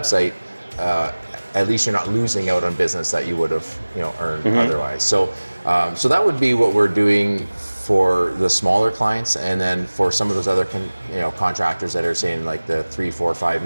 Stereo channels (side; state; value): both; inverted; correlation -1.00